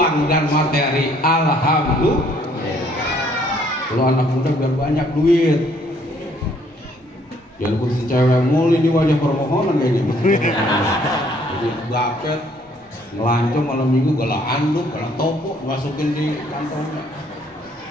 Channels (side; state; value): both; normal; correlation 0.64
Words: dan materi. Alhamdulillah. Kalau anak muda biar banyak duit. Jangan kursi cewek mulu, ini wajah permohonan kayaknya. Jadi gapet, ngelancong malam minggu, galah anduk, galah topo, masukin di kantongnya.